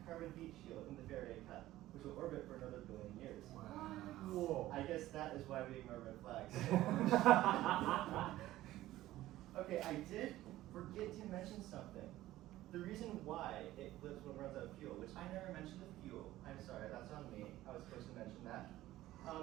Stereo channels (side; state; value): left; quieter; 15.4 dB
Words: carbon heat shield in the Faraday cup, which will orbit for another billion years. Whoa. I guess that is why we ignore red flags. Okay, I did forget to mention something. The reason why it flips when it runs out of fuel, which I never mentioned the fuel. I'm sorry, that's on me. I was supposed to mention that.